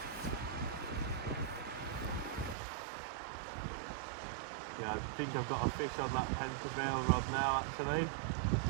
Yeah, I think I've got a fish on that Pen Prevail rod now actually.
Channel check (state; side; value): drops out; left; at 2.6 s